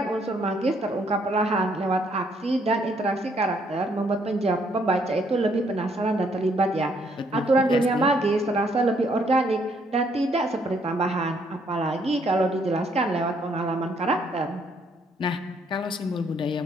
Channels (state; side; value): normal; both; correlation 0.69